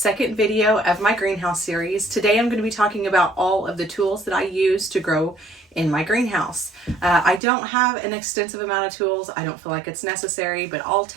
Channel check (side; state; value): left; drops out; at 7.4 s